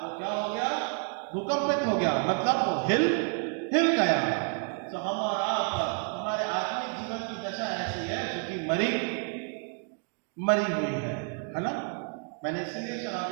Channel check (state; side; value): quieter; left; 39.9 dB